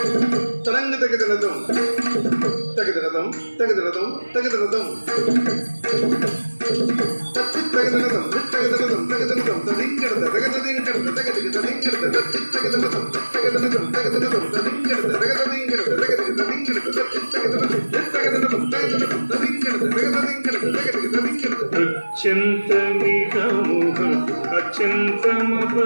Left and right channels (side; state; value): both; inverted; correlation -1.00